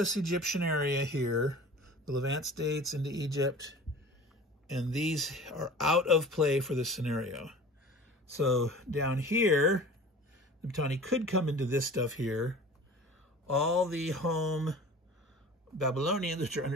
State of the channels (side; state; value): both; normal; correlation 0.41